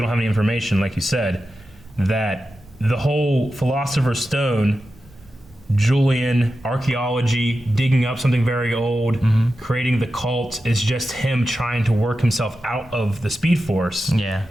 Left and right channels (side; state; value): both; normal; correlation 0.91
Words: don't have any information, like you said, that the whole Philosopher's Stone, Julian, archaeology, digging up something very old, creating the cult, is just him trying to work himself out of the Speed Force. Yeah.